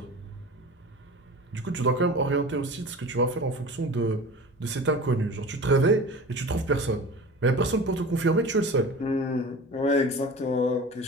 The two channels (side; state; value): both; normal; correlation 0.36